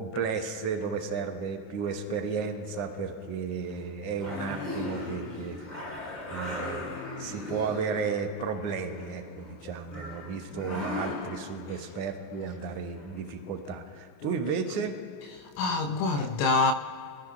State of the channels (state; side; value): late; right; 28 ms